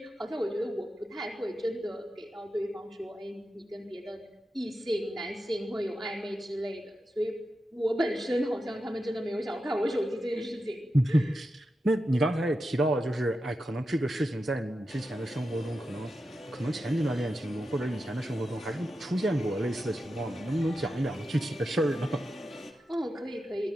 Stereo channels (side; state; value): both; normal; correlation 0.89